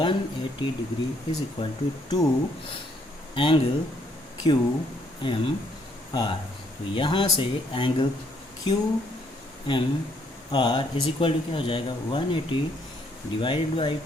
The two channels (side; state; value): both; normal; correlation 0.69